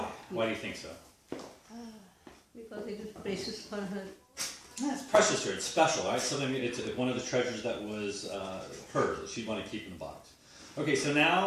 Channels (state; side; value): identical; both; correlation 1.00